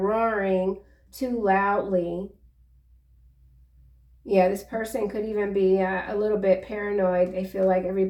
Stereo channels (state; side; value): identical; both; correlation 1.00